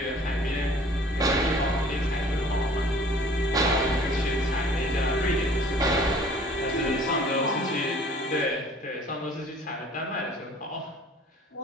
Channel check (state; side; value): normal; both; correlation 0.51